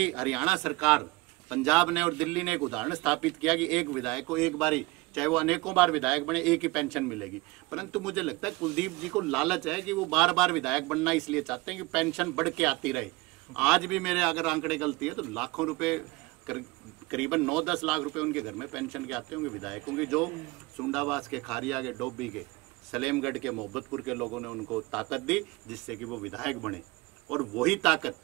हरियाणा सरकार, पंजाब ने और दिल्ली ने एक उदाहरण स्थापित किया कि एक विधायक को एक बारी, चाहे वो अनेकों बार विधायक बने, एक ही पेंशन मिलेगी। परंतु मुझे लगता है कुलदीप जी को लालच है कि वो बार बार विधायक बनना इसलिए चाहते हैं कि पेंशन बढ़ के आती रहे। आज भी मेरे अगर आंकड़े गलती है तो लाखों रुपए, करीबन 9-10 लाख रुपए उनके घर में पेंशन के आते होंगे विधायकों के, जो सुंडावास के, खारिया के, डोबी के, सलेमगढ़ के, मोहब्बतपुर के लोगों ने उनको ताकत दी जिससे कि वो विधायक बने। और वही ताकत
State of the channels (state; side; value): quieter; left; 23.4 dB